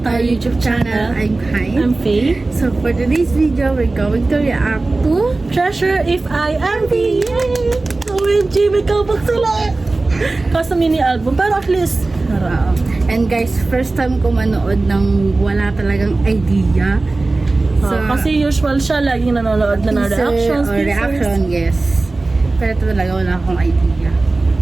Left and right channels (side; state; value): left; quieter; 3.3 dB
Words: to our YouTube channel. I'm Kai. I'm Faye. So for today's video, we're going to react to Treasure If I Am Thee. Yay! OMG, may kabak sila. Kasi mini album, pero at least and guys, first time ko manood ng wala talagang idea. kasi usual siya, laging nanonood na ng reactions. Reaction, yes. Pero talaga wala akong idea.